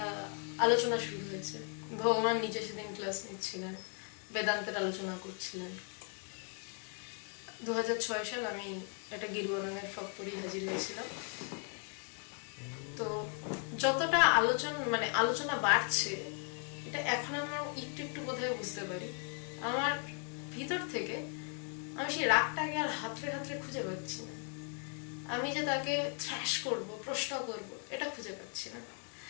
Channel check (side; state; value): right; quieter; 39.9 dB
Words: আলোচনা শুরু হয়েছে। ভগবান নিজে সেদিন ক্লাস নিচ্ছিলেন, বেদান্তের আলোচনা করছিলেন। 2006 সাল আমি একটা গেরুয়া রঙের ফ্রক পরে হাজির হয়েছিলাম। তো যতটা আলোচনা বাড়ছে, এটা এখন আমার একটু একটু বোধহয় বুঝতে পারি। আমার ভিতর থেকে আমি সেই রাগটাকে আর হাতড়ে হাতড়ে খুঁজে পাচ্ছি না। আমি যে তাকে থ্র্যাশ করব, প্রশ্ন করব, এটা খুঁজে পাচ্ছি না।